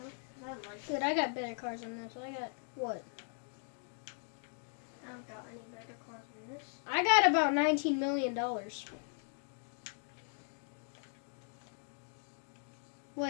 I like it. Dude, I got better cars than this. I got, what? I don't got any better cars than this. I got about $19 million.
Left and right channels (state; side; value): silent; right; 52 dB below the other